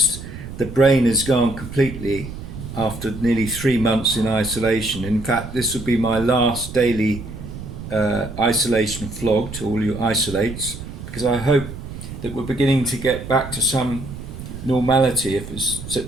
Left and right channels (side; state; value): right; noise; rumble, 11 dB below the sound